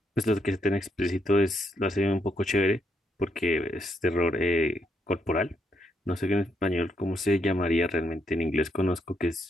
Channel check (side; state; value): both; normal; correlation 0.77